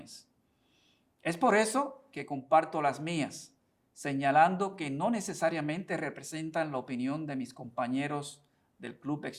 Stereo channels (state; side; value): identical; both; correlation 1.00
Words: Es por eso que comparto las mías, señalando que no necesariamente representan la opinión de mis compañeros del Club